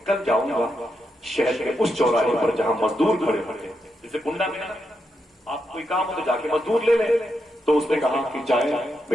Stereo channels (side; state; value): both; normal; correlation 0.84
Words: कल जाऊंगा शहर के उस चौराहे पर जहां मजदूर खड़े होते, जैसे कुंडा में ना आप कोई काम हो तो जाके मजदूर ले ले। तो उसने कहा कि जाए